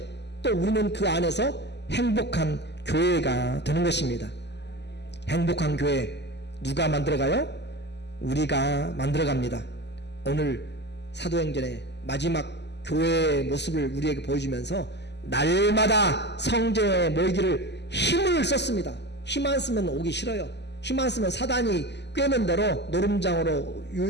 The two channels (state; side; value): late; right; 0.50 ms